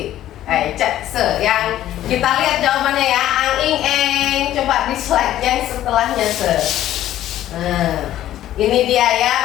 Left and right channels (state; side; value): quieter; right; 12.9 dB